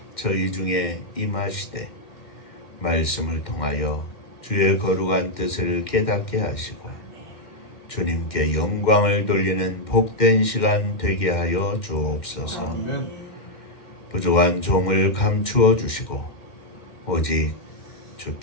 저희 중에 임하시되 말씀을 통하여 주의 거룩한 뜻을 깨닫게 하시고 주님께 영광을 돌리는 복된 시간 되게 하여 주옵소서. 부족한 종을 감추어 주시고 오직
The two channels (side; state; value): right; late; 2.1 ms